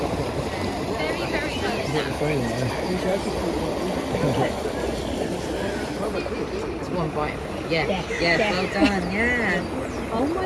It's one bite. Yeah, well done, yeah. Oh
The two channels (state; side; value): identical; both; correlation 1.00